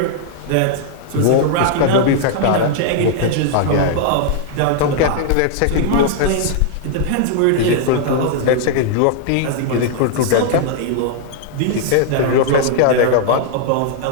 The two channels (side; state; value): both; different; correlation -0.01